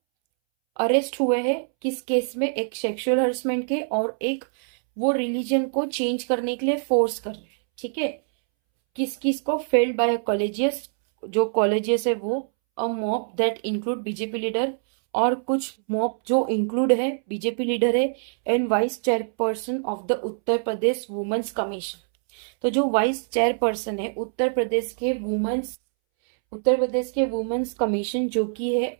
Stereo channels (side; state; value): left; silent; 62 dB below the other